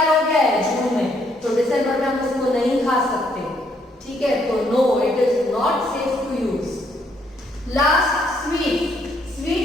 हो गया है जून में, तो दिसंबर में हम इसको नहीं खा सकते. ठीक है, तो no, it is not safe to use. Last sweet,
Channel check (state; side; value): normal; both; correlation 0.70